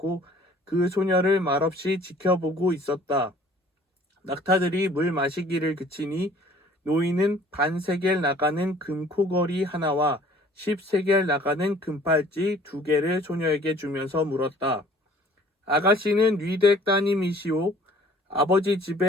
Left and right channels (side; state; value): both; normal; correlation 0.53